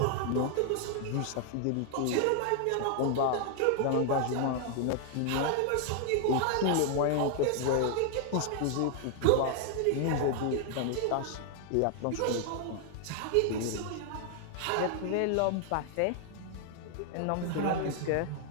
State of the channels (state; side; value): different; both; correlation 0.00